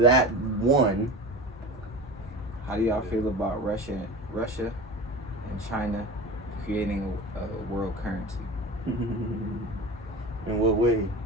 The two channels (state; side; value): normal; both; correlation 0.32